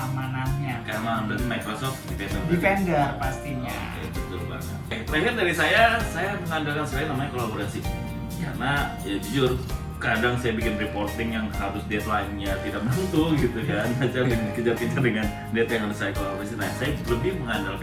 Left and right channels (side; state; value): both; identical; correlation 1.00